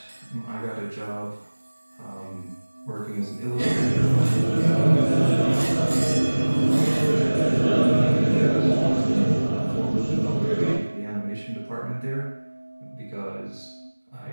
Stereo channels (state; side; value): inverted; both; correlation -1.00